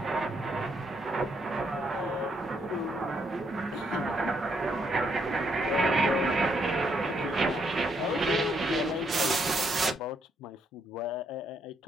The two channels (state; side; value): normal; both; correlation 0.74